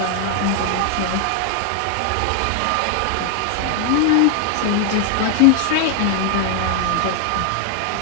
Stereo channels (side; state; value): both; different; correlation 0.00